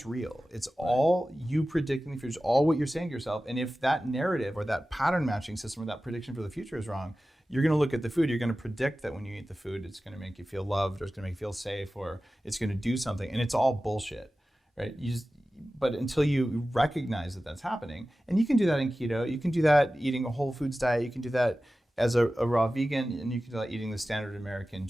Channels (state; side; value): normal; both; correlation 0.95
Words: real. It's all you predicting the future, all what you're saying to yourself. And if that narrative or that pattern matching system or that prediction for the future is wrong, you're going to look at the food. You're going to predict that when you eat the food, it's going to make you feel loved, or it's going to make you feel safe, or it's going to do something. And it's all bullshit, right? But until you recognize that that's happening, and you can do that in keto, you can do that eating a whole foods diet, you can do that as a raw vegan, and you can do that eating the standard American